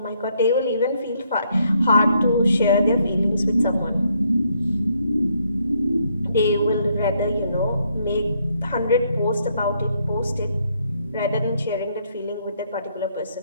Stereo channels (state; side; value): inverted; both; correlation -0.72